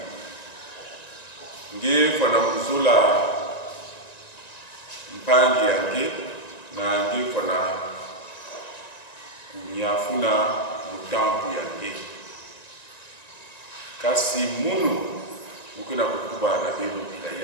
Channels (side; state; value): right; late; 1.9 ms